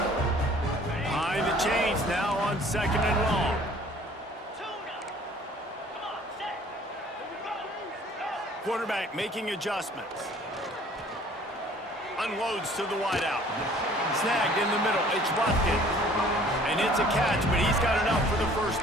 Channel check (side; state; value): both; normal; correlation 0.54